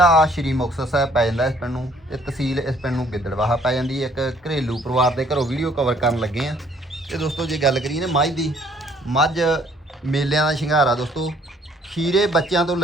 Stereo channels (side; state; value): both; normal; correlation 0.61